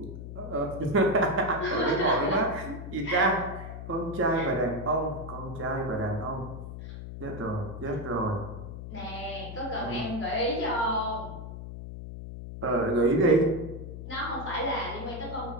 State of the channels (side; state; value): left; noise; hum, 9 dB below the sound